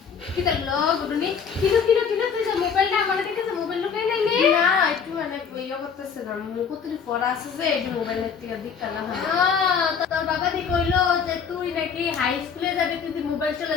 কি করলো গুডুনি কিলো তুই যে মোবাইলটা আমার কাছে মোবাইল লুকাই নাই নে না একটু মানে ইয়া করতেছে না মুকুতরি পড়া আছে যে এই মোবাইলের থেকে দিকটা না হয় তো তোর বাবা দি কইলো যে তুই নাকি হাই স্কুলে যাবি তুই মোবাইল চলা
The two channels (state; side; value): quieter; right; 6.5 dB